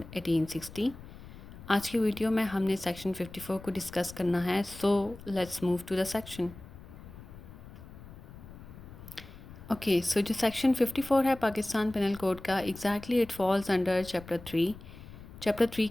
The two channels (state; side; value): noise; left; rumble, 16 dB below the sound